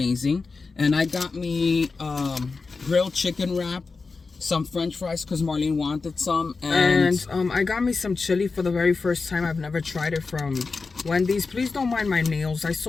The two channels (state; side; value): quieter; right; 4.3 dB